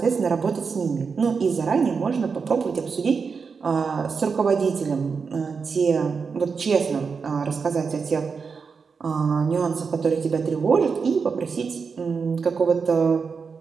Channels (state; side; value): quieter; left; 5.4 dB